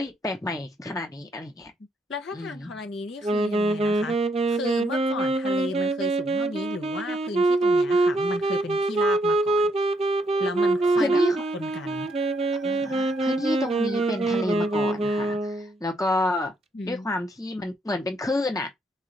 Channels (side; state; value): both; normal; correlation 0.74